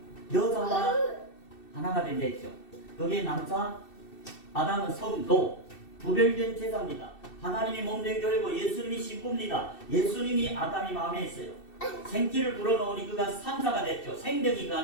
여자와 하나가 된다 했죠. 거기에 남자, 아담은 성도, 구별된 제자입니다. 하나님이 몸된 교회고 예수님이 신부입니다. 예수님이 아담이 마음에 있어요. 생기를 불어넣으니 그가 산자가 됐죠. 생명이 그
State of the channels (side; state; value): right; late; 2.7 ms